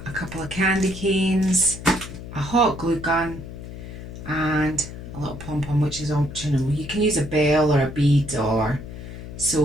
a couple of candy canes, a hot glue gun, and a little pom-pom, which is optional. You can use a bell or a bead or...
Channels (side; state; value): left; noise; hum, 11 dB below the sound